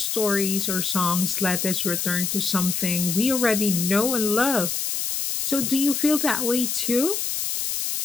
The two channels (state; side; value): noise; left; hiss, 1 dB below the sound